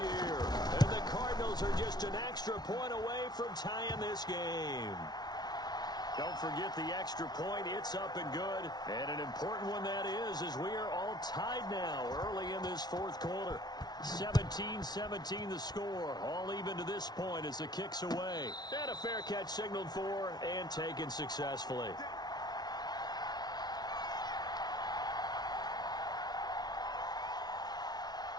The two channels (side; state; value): right; late; 0.19 ms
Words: And the Cardinals are just an extra point away from tying this game. Don't forget the extra point. It's up and good. And an important one that is, as we are all tied now early in this 4th quarter. 17-17 the score. All even to this point as the kick's away. And a fair catch signaled for and taken successfully.